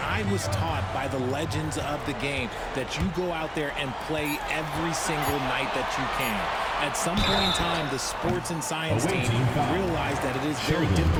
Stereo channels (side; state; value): both; identical; correlation 1.00